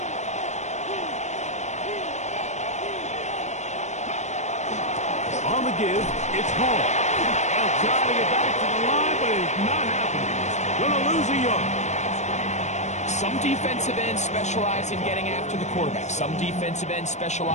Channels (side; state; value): right; late; 0.34 ms